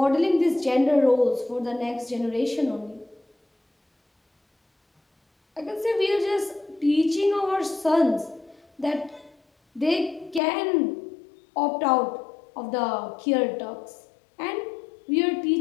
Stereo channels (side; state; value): right; drops out; at 10.4 s